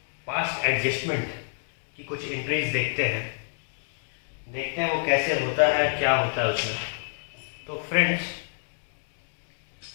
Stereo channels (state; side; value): silent; right; digital silence